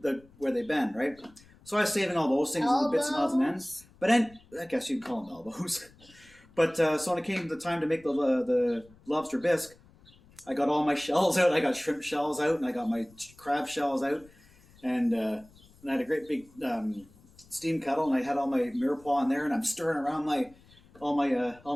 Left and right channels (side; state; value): left; noise; rumble, 27 dB below the sound